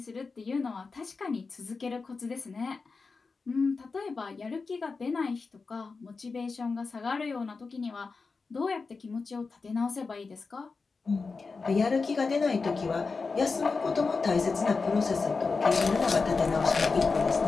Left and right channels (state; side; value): quieter; right; 4.4 dB